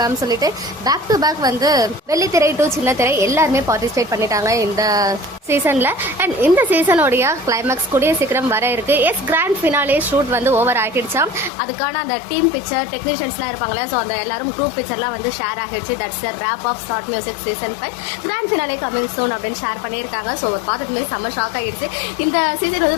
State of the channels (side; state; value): right; drops out; at 11.5 s